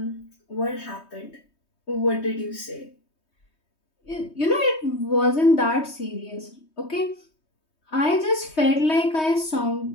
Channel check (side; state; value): right; late; 3.2 ms